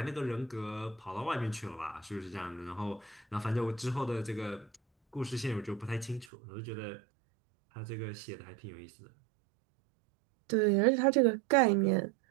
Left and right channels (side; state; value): left; drops out; at 6.3 s